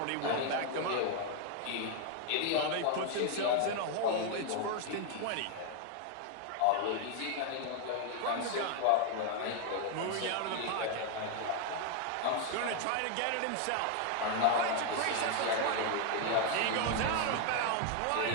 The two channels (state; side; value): different; both; correlation 0.00